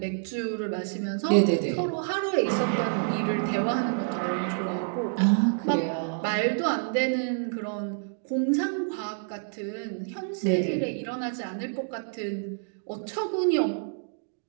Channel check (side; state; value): left; silent; digital silence